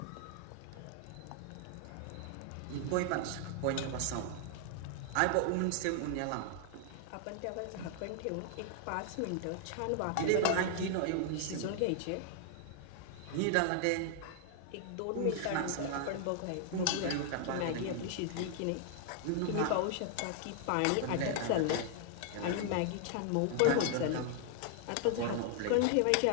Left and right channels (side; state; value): both; different; correlation 0.00